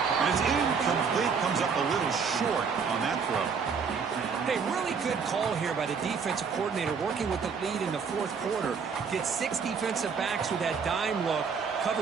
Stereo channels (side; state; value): left; quieter; 5.8 dB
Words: And it's incomplete. Comes up a little short on that throw. Hey, really good call here by the defensive coordinator working with the lead in the 4th quarter. Get 6 defensive backs with that dime look.